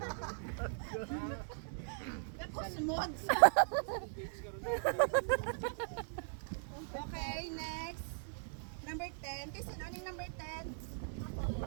Cosmods. Okay, next. Number 10. Kasi ano yung number 10?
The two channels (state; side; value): silent; left; digital silence